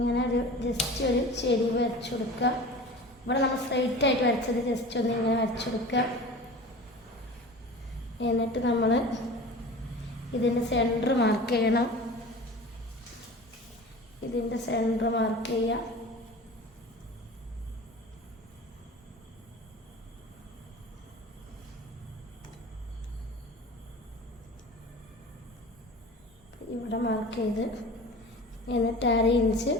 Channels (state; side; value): normal; both; correlation 0.38